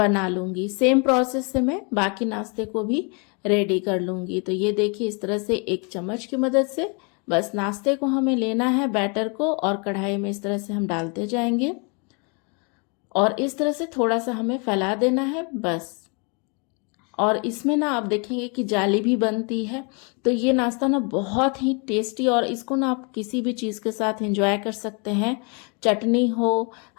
लूँगी। सेम प्रोसेस से मैं बाकी नाश्ते को भी रेडी कर लूँगी। तो ये देखिए इस तरह से 1 चम्मच की मदद से बस नाश्ते को हमें लेना है बैटर को और कढ़ाई में इस तरह से हम डालते जाएंगे और इस तरह से थोड़ा सा हमें फैला देना है बस। और इसमें ना आप देखेंगे कि जाली भी बनती है। तो ये नाश्ता ना बहुत ही टेस्टी और इसको ना आप किसी भी चीज़ के साथ एंजॉय कर सकते हैं। चटनी हो,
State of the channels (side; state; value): right; quieter; 34.2 dB